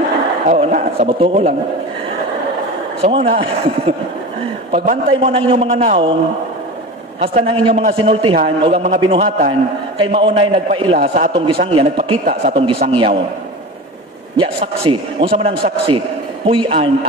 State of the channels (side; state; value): both; normal; correlation 0.30